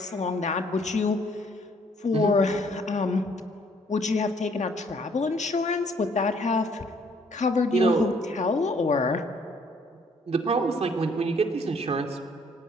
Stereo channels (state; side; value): normal; both; correlation 0.63